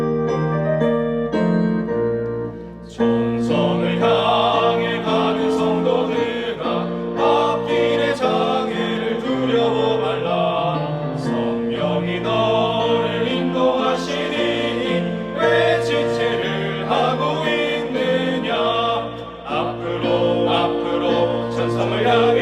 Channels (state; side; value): identical; both; correlation 1.00